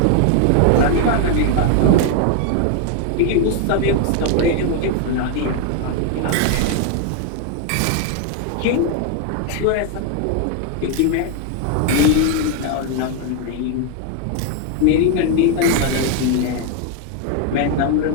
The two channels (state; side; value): different; both; correlation 0.01